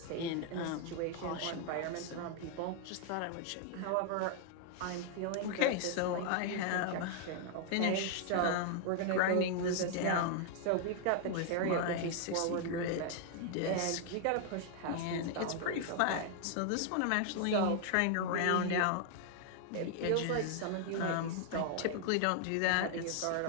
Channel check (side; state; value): both; different; correlation 0.00